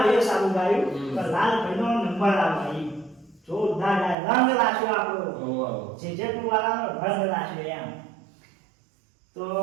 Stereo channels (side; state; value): left; drops out; at 4.2 s